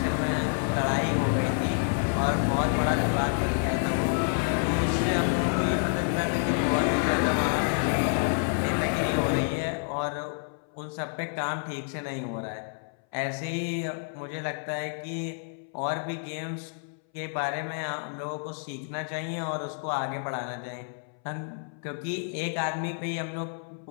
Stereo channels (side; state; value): right; silent; 59 dB below the other